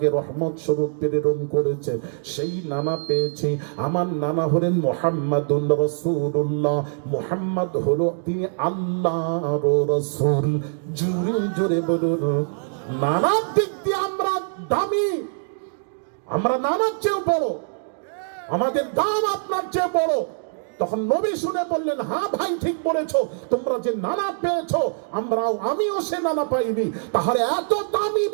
রহমত স্বরূপ প্রেরণ করেছে, সেই নানা পেয়েছি। আমার নানা হলেন মুহাম্মাদুর রাসূলুল্লাহ, মুহাম্মদ হলো তিনি আল্লাহর রাসূল। জোরে জোরে বলুন, নানার দিক দিয়ে আমরা দামি, আমরা নানার চেয়েও বড়, আমাদের দাম আপনার চেয়ে বড়। তখন নবী শুনে বললেন, হ্যাঁ ভাই ঠিক বলেছো, তোমরা যে নানা পেয়েছো আমিও সে নানা পাইনি, তাহলে এত দামি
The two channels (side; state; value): left; silent; digital silence